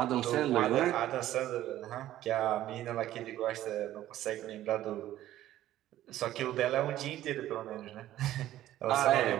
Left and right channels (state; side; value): quieter; left; 13.6 dB